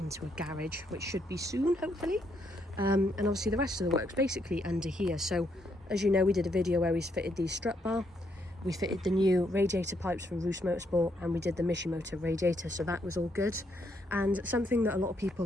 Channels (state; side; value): normal; both; correlation 0.75